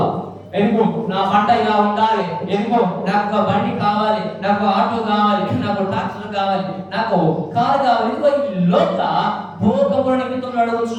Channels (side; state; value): both; identical; correlation 1.00